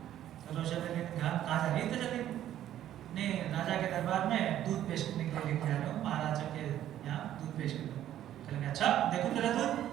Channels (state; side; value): quieter; left; 11.9 dB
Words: تو روشن علی نے کہا کہاں جا رہی ہے؟ تو چلی نہیں, راجا کے دربار میں دودھ پیش کرنے کے لیے لے کے جا رہا ہوں, مہاراجا کے یہاں دودھ پیش کرنے. کہنے کہ اچھا دیکھو تیرا دودھ.